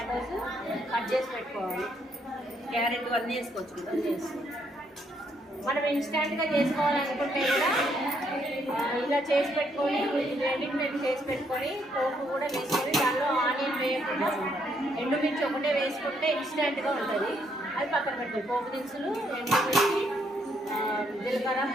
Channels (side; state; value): both; normal; correlation 0.72